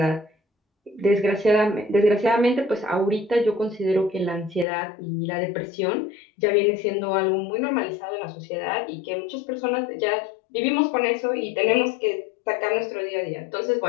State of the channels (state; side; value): drops out; right; at 4.7 s